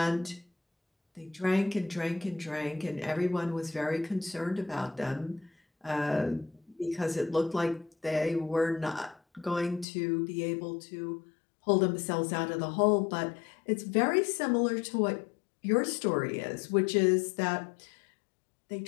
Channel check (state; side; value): drops out; right; at 9.9 s